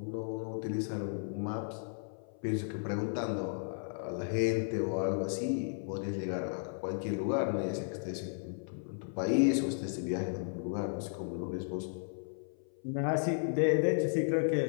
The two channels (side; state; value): right; silent; 55 dB below the other